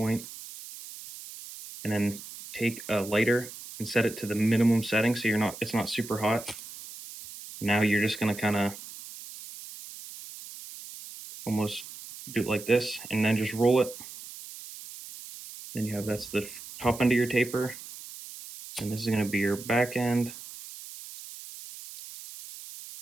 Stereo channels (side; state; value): right; noise; hiss, 14 dB below the sound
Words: and then take a lighter and set it to the minimum setting so it's not super hot. Now you're just gonna kind of almost do it like this and then just roll it. Then you have that's the top end of your taper, and this is gonna be your back end.